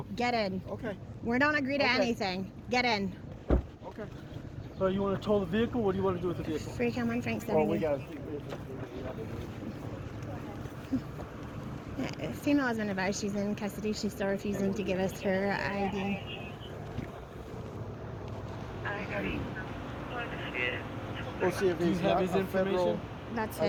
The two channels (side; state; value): both; identical; correlation 1.00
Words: Get in. Okay. We don't agree to Okay. anything. Get in. Okay. So you want to tow the vehicle? What do you want to do with the vehicle? Free Cameron Frank Well, we 70. got. Female has been advised she's in custody. She's still refusing to give us her ID. We'll see if Do you he's have got his a federal information? That's